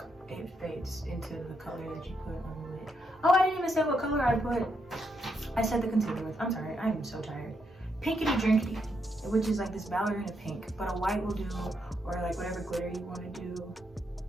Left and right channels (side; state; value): both; normal; correlation 0.79